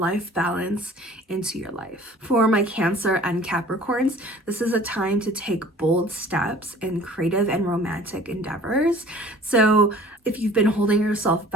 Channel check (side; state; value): both; normal; correlation 0.48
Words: balance, into your life. For my Cancer and Capricorns, this is a time to take bold steps in creative and romantic endeavors. So if you've been holding yourself